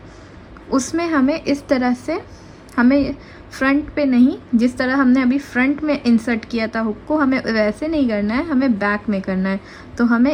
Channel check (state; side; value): identical; both; correlation 1.00